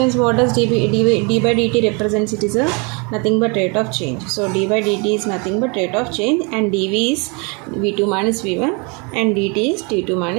what does d by dt represents? It is a nothing but rate of change. So d by dt is nothing but rate of change, and dv is v2 minus v1 and dt is t2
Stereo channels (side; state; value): left; quieter; 31.8 dB